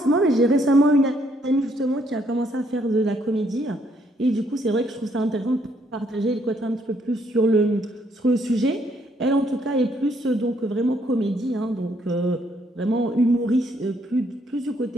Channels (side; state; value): both; normal; correlation 0.70